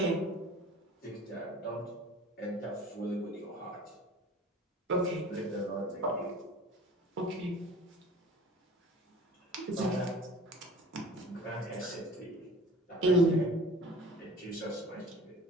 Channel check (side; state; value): both; normal; correlation 0.44